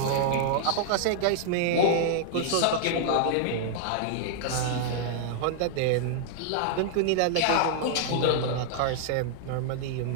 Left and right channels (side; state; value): both; different; correlation -0.01